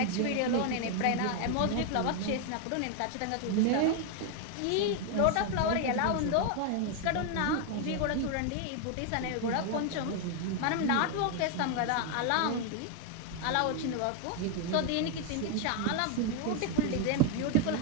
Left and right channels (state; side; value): different; both; correlation 0.01